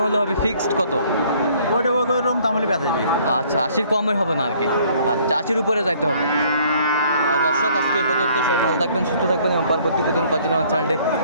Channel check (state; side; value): inverted; both; correlation -0.60